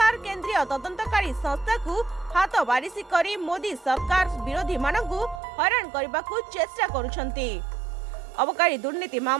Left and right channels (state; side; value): drops out; left; at 5.4 s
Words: केंद्रीय तदंतकारी संस्था को हाथ बारिशी करी मोदी सरकार विरोधी मानकू हैरान करबाकू चेष्टा करूछंती। अबकारी दुर्नीति